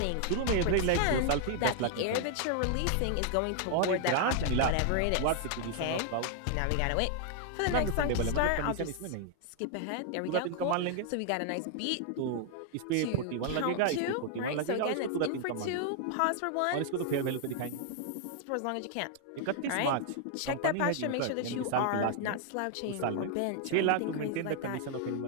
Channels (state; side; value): different; both; correlation 0.00